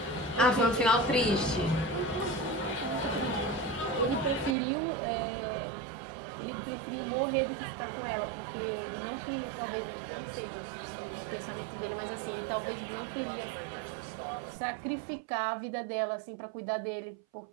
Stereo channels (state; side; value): drops out; left; at 4.5 s